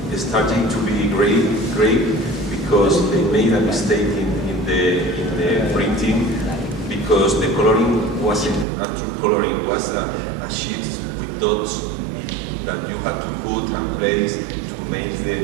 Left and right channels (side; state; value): left; drops out; at 8.7 s